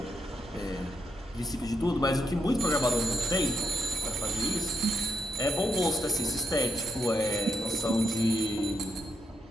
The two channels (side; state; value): both; normal; correlation 0.81